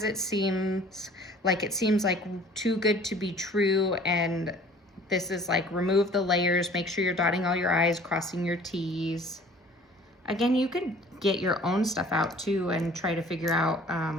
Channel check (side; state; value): both; normal; correlation 0.50